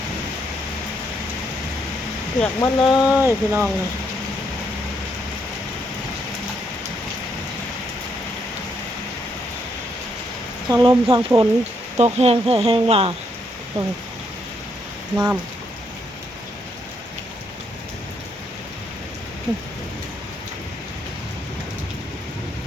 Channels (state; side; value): normal; both; correlation 0.75